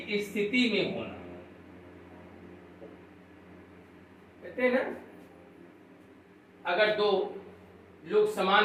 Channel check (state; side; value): identical; both; correlation 1.00